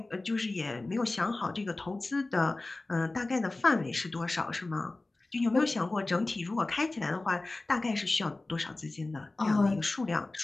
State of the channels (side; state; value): right; quieter; 3.0 dB